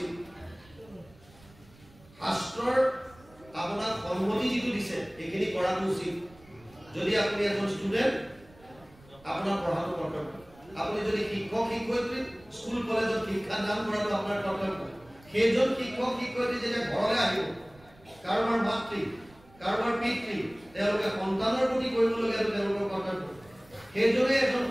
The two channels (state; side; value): noise; right; rumble, 26 dB below the sound